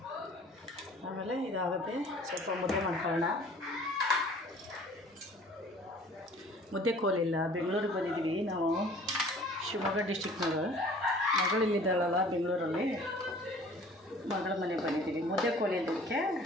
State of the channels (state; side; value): normal; both; correlation 0.50